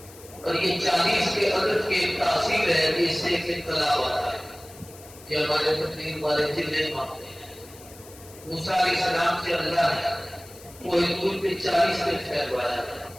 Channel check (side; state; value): left; noise; hiss, 20 dB below the sound